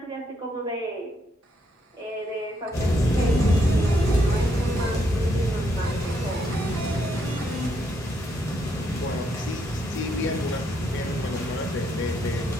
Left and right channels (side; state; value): both; normal; correlation 0.76